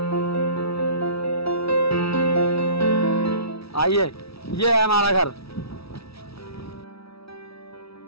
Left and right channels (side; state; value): right; late; 0.76 ms